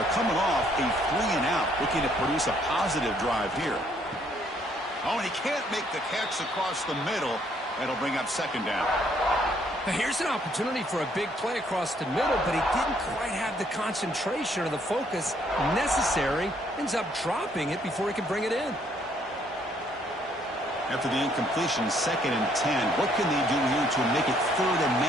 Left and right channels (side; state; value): both; normal; correlation 0.67